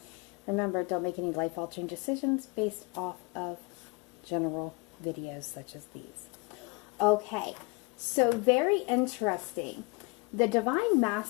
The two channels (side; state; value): right; quieter; 29.0 dB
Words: Remember, don't make any life-altering decisions based off of general videos such as these. Okay, so very interesting. The Divine